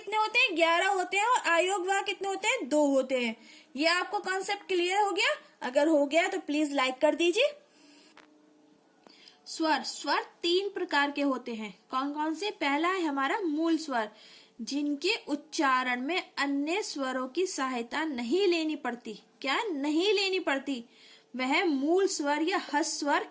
होते हैं, 11 होते हैं, और आयोग वाह कितने होते हैं, 2 होते हैं। ये आपको कॉन्सेप्ट क्लियर हो गया? अगर हो गया तो प्लीज लाइक कर दीजिए। स्वर 3 प्रकार के होते हैं। कौन कौन से? पहला है हमारा मूल स्वर, जिनके उच्चारण में अन्य स्वरों की सहायता नहीं लेनी पड़ती। क्या नहीं लेनी पड़ती? वह मूल स्वर या हस्त स्वर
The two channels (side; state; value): both; identical; correlation 1.00